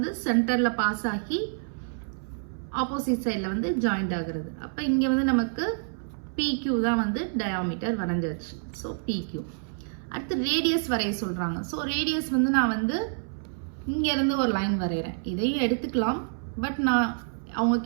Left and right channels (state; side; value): silent; left; 59 dB below the other